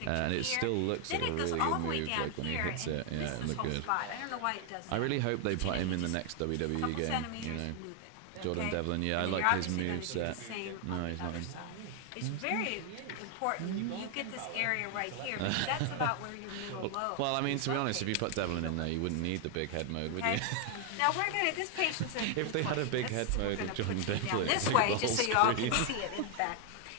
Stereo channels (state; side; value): different; both; correlation 0.00